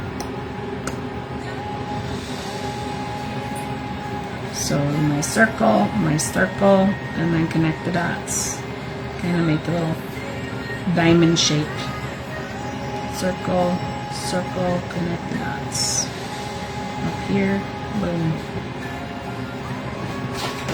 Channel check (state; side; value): identical; both; correlation 1.00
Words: So my circle, and then connect the dots. Kind of make a little diamond shape. Circle, circle, connect the dots. Up here, boom.